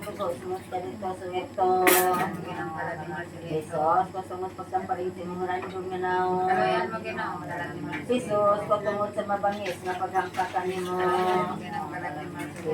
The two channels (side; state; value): both; identical; correlation 1.00